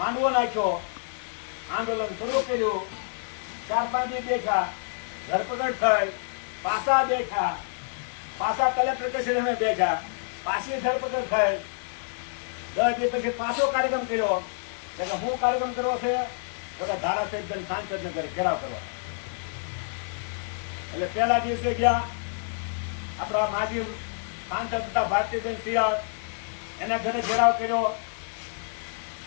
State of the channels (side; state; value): right; silent; 59 dB below the other